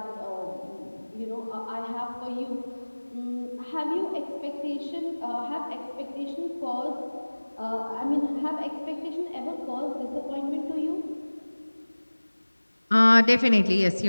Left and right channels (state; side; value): inverted; both; correlation -1.00